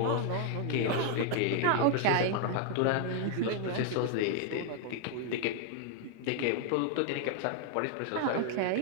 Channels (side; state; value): both; different; correlation 0.00